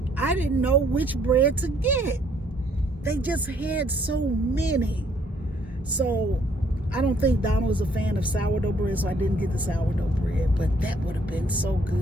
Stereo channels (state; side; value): normal; both; correlation 0.65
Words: I didn't know which bread to get. They just had so many. So I don't think Donald is a fan of sourdough bread, so I didn't get the sourdough bread, but that would have been so